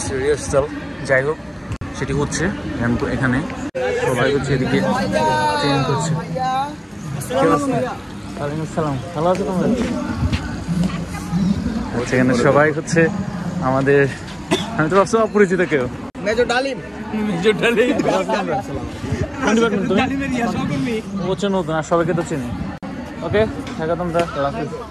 রিহার্সাল, যাই হোক সেটি হচ্ছে। এখানে সবাই হচ্ছে এদিকে ট্রেন করছে। আসসালাম, ভালো আছো তোমরা? এখানে সবাই হচ্ছে আমাদের, আমি তো ভাবছি অপরিচিত কেউ। মেজর ডালিম, নতুন, আর সবাইকে তো চিনি। ওকে, থাকা তোমরা।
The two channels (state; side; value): identical; both; correlation 1.00